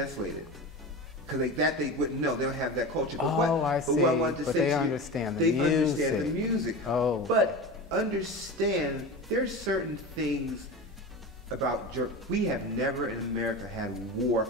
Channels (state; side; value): normal; both; correlation 0.28